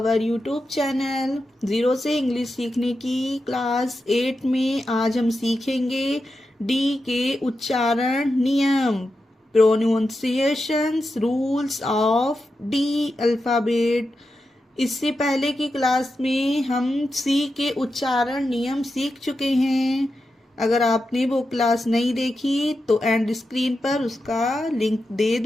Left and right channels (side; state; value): both; normal; correlation 0.89